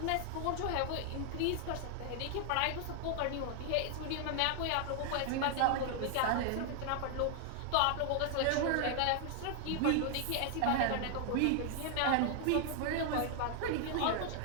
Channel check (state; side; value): different; both; correlation 0.00